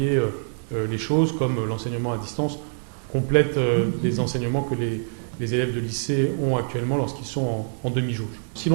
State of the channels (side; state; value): left; silent; digital silence